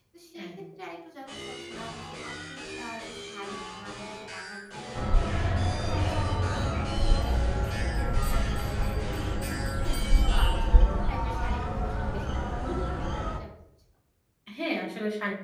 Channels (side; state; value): both; identical; correlation 1.00